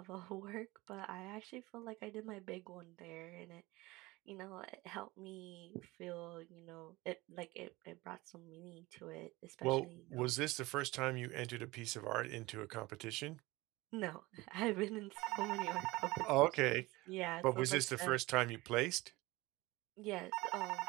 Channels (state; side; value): quieter; left; 21.0 dB